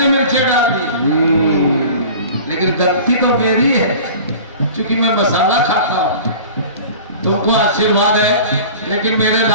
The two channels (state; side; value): inverted; both; correlation -0.40